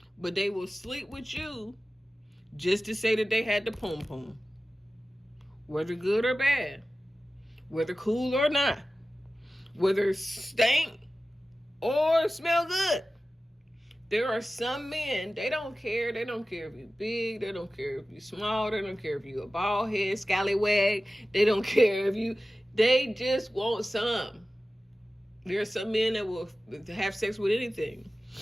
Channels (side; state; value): both; normal; correlation 0.95